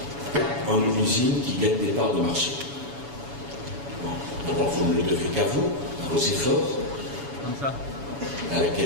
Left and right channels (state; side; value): late; left; 7.1 ms